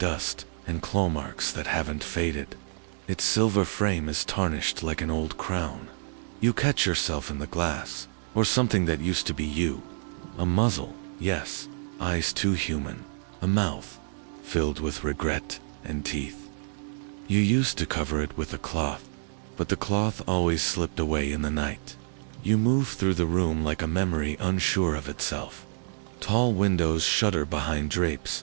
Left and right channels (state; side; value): silent; left; digital silence